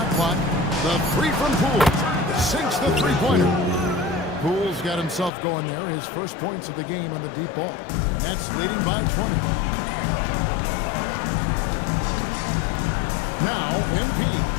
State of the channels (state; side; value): drops out; right; at 5.3 s